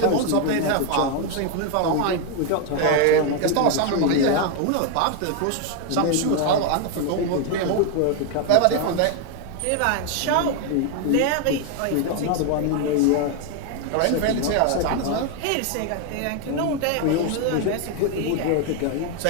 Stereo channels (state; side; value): different; both; correlation 0.01